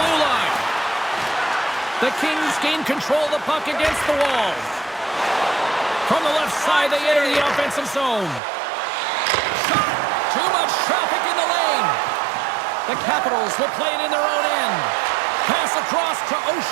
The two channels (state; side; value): drops out; left; at 8.4 s